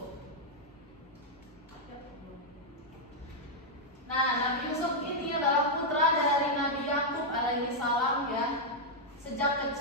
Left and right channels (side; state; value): both; normal; correlation -0.03